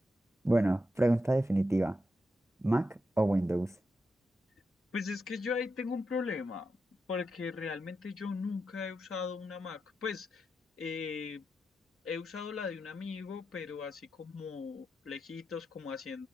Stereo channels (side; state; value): both; normal; correlation 0.87